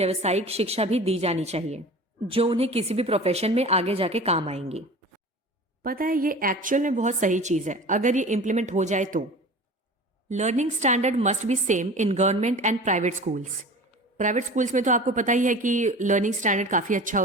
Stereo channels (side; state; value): both; normal; correlation 0.38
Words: शिक्षा भी दी जानी चाहिए जो उन्हें किसी भी प्रोफेशन में आगे जाके काम आएंगी। पता है ये एक्चुअल में बहुत सही चीज है अगर ये इम्प्लीमेंट हो जाए तो। Learning standard must be same in government and private schools. Private schools में तो आपको पता ही है कि लर्निंग स्टैंडर्ड काफी अच्छा